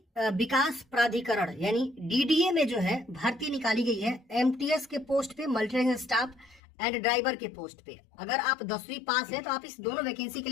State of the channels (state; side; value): drops out; right; at 6.6 s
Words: विकास प्राधिकरण यानी डीडीए में जो है भर्ती निकाली गई है एमटीएस के पोस्ट पे, मल्टी स्टाफ एंड ड्राइवर के पोस्ट पे। अगर आप 10वीं पास है तो आप इस दोनों वैकेंसी के